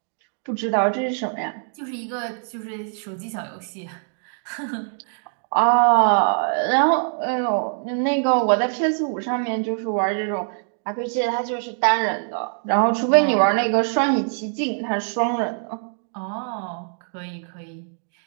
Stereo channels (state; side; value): silent; left; 59 dB below the other